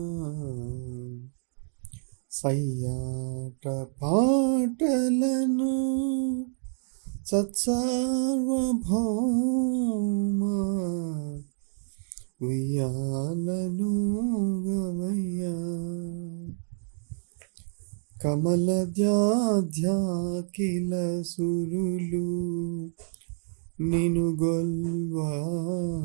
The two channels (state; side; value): silent; left; digital silence